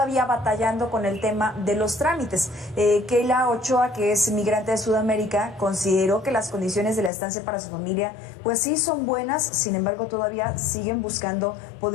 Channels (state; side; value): drops out; right; at 7.1 s